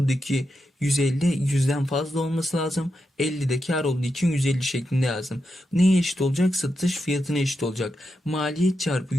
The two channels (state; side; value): normal; both; correlation 0.87